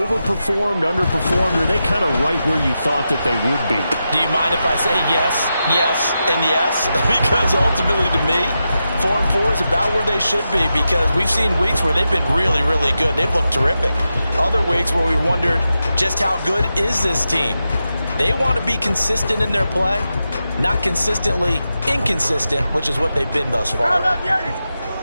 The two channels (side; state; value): both; inverted; correlation -0.89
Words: underperformed, or are they kind of right where you thought that they would be? Do you mind if I say yes, yes, and yes? Because ultimately to me, 4-4 is about where they should be because we've seen weeks where they've been really, really good. They've looked terrific. Other weeks where we wondered just how good is this team. They want to be consistent in their play, not consistently inconsistent, which is what they've been thus far.